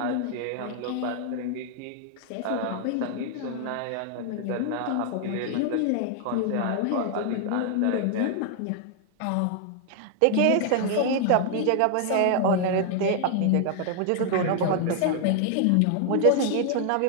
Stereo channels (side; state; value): both; different; correlation 0.00